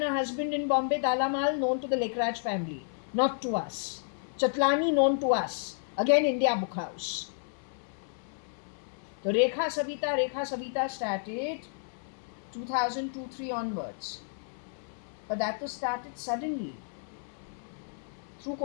her husband in Bombay, Dalamal, known to the Lekraj family, not to us. Chatlani, known to us, again India Book House. The Rekha Savita started 2002-3 onwards. But that was started suddenly through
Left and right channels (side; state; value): right; silent; digital silence